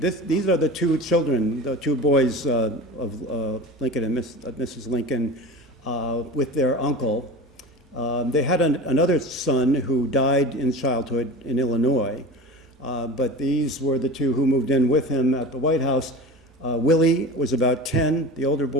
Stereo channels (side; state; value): both; normal; correlation 0.33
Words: are the two children, the two boys of Lincoln and Mrs. Lincoln with their uncle. They had another son who died in childhood in Illinois, but these were the two who moved in with him at the White House. Willie was about 10, the older